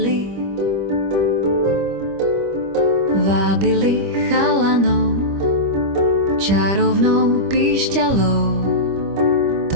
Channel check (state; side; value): late; left; 25 ms